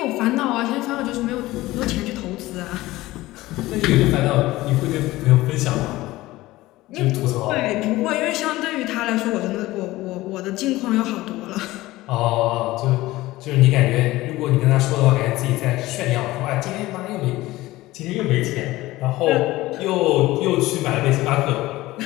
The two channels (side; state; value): right; quieter; 18.0 dB